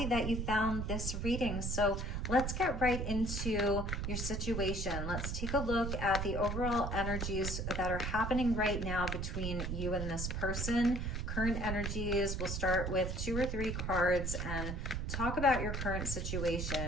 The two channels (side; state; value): right; noise; rumble, 2 dB below the sound